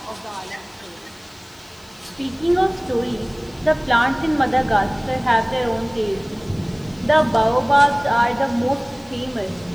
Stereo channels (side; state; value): left; noise; hiss, 27 dB below the sound